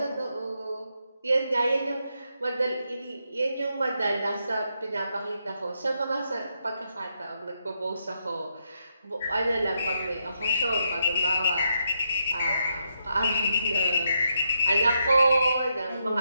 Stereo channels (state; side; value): inverted; both; correlation -0.81